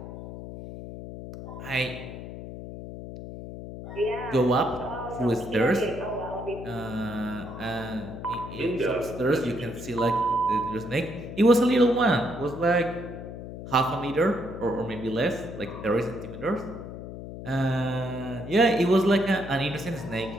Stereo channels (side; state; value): left; noise; hum, 10 dB below the sound